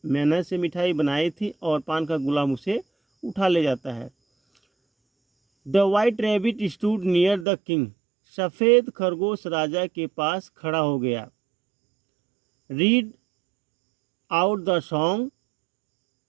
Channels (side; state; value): left; drops out; at 7.5 s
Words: मेहनत से मिठाई बनाई थी और पान का गुलाम उसे उठा ले जाता है। The white rabbit stood near the king, सफ़ेद खरगोश राजा के पास खड़ा हो गया। रीड आउट द सॉन्ग,